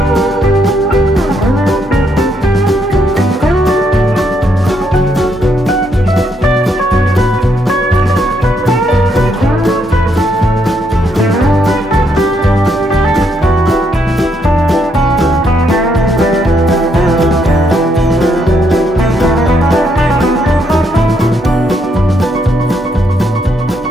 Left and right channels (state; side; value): normal; both; correlation 0.75